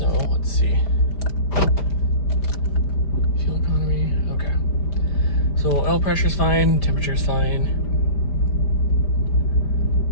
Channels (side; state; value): right; late; 5.1 ms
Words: let's see. Fuel economy, okay. So oil pressure's fine, temperature's fine.